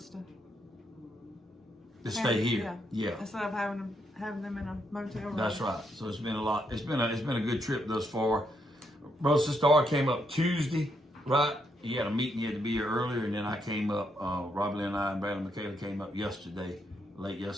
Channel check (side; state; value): both; normal; correlation 0.77